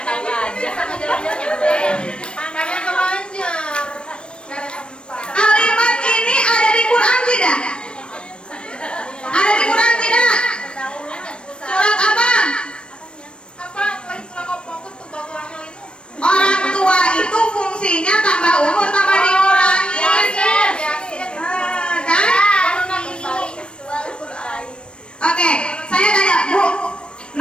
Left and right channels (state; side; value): late; right; 0.056 ms